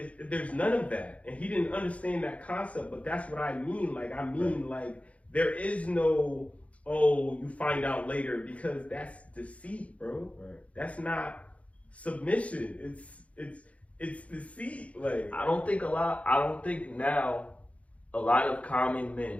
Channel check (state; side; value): late; right; 0.065 ms